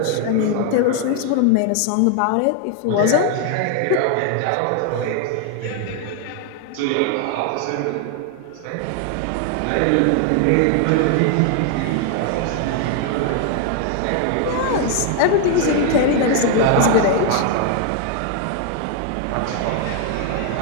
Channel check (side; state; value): both; different; correlation 0.00